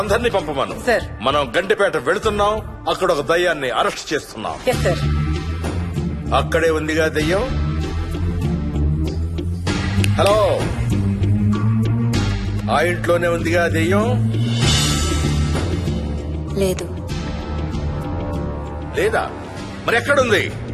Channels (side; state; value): both; identical; correlation 1.00